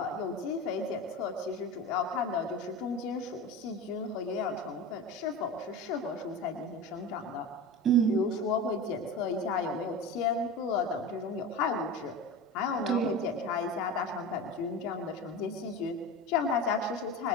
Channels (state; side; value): normal; both; correlation 0.28